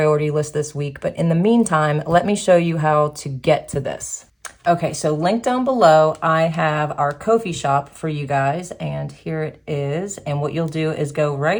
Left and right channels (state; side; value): identical; both; correlation 1.00